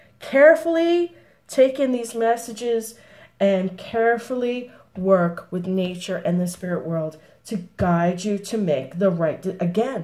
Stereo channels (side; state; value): both; identical; correlation 1.00